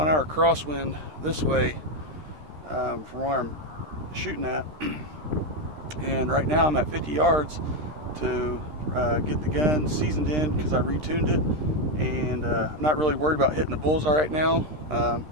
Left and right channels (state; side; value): late; left; 13 ms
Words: an hour crosswind this way from where I'm shooting at. And right now I'm at 50 yards to get the gun seasoned in because I retuned it. And I'm not really worried about hitting the bullseye right now.